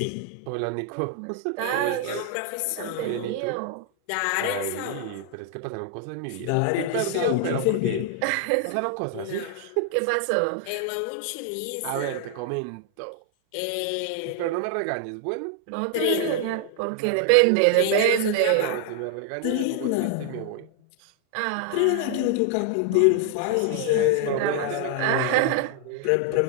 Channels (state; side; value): different; both; correlation 0.00